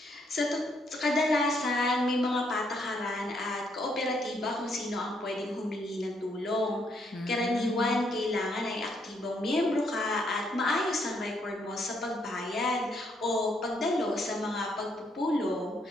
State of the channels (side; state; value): both; normal; correlation 0.73